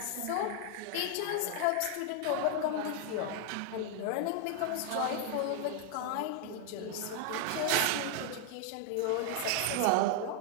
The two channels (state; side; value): different; both; correlation 0.00